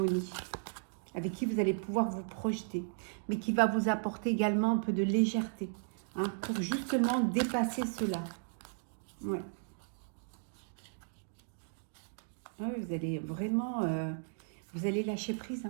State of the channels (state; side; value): silent; left; digital silence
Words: avec qui vous allez pouvoir vous projeter, mais qui va vous apporter également un peu de légèreté, hein, pour justement dépasser cela. Ouais. Ouais, vous allez vraiment, vous allez lâcher prise.